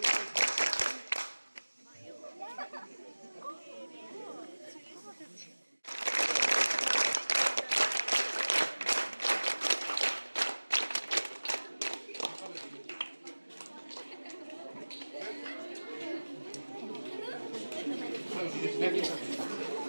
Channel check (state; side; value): inverted; both; correlation -1.00